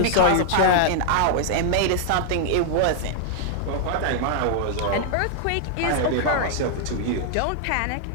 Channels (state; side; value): different; both; correlation 0.00